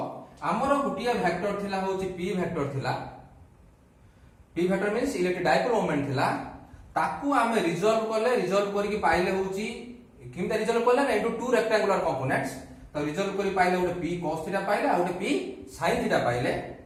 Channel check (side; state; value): both; identical; correlation 1.00